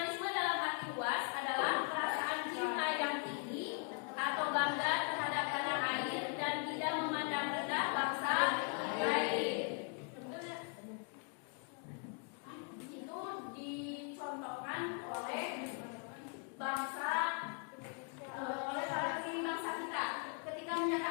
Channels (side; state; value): right; quieter; 38.6 dB